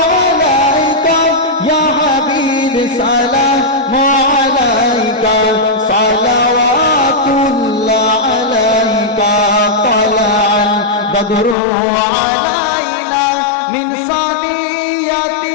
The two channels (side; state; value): right; drops out; at 11.6 s